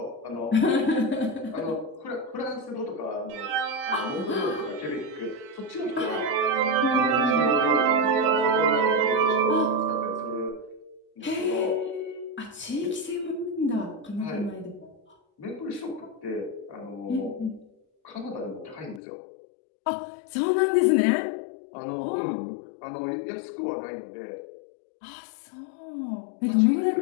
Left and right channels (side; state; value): right; drops out; at 19.0 s